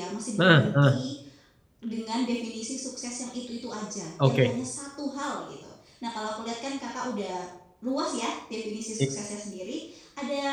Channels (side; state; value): both; identical; correlation 1.00